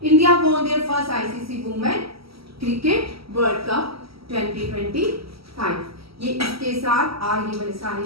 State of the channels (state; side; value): late; left; 0.75 ms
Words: India won their first ICC women cricket world cup 2025। ये इसके साथ आगे वाले सारे